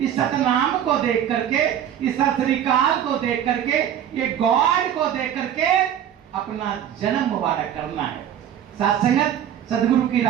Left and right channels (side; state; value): left; quieter; 9.9 dB